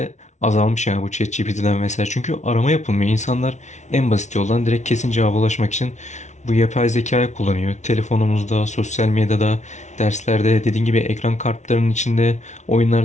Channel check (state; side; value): late; right; 0.34 ms